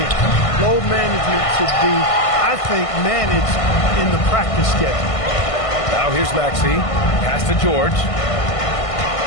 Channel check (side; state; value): right; late; 1.5 ms